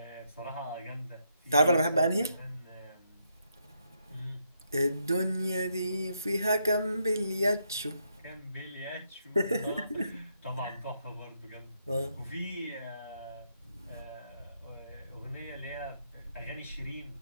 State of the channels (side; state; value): both; inverted; correlation -0.77